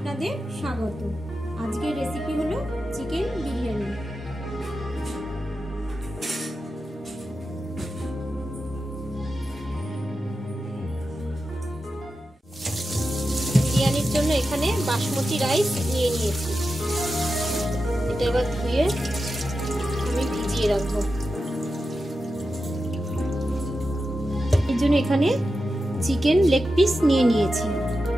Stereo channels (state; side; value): normal; both; correlation 0.90